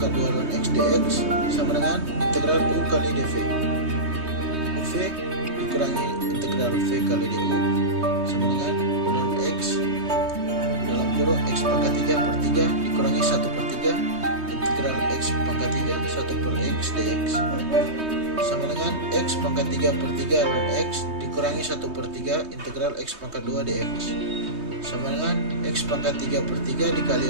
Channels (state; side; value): late; left; 3.2 ms